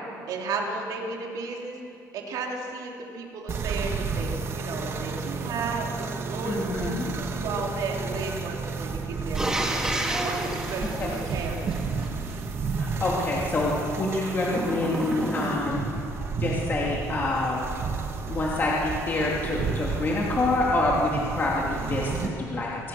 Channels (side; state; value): both; normal; correlation 0.64